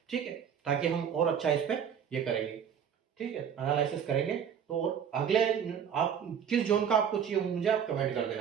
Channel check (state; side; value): quieter; left; 8.0 dB